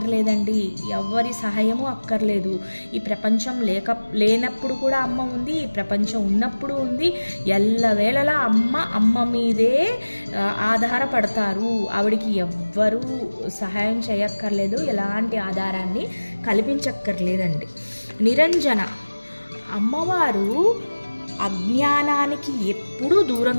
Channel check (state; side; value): inverted; both; correlation -1.00